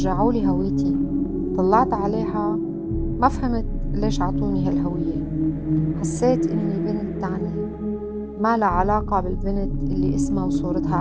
لي هويتي. طلعت عليها ما فهمت ليش عطوني هالهوية. حسيت إني بنت تانية ما لها علاقة بالبنت اللي اسمها وصورتها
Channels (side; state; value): both; identical; correlation 1.00